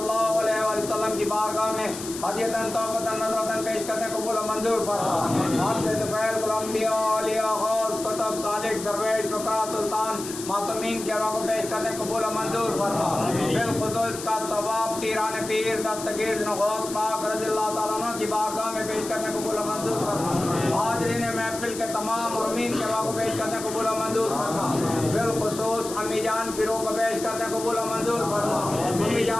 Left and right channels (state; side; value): noise; left; hiss, 10 dB below the sound